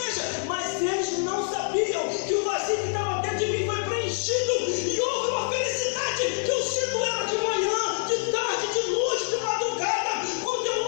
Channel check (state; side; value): silent; right; 61 dB below the other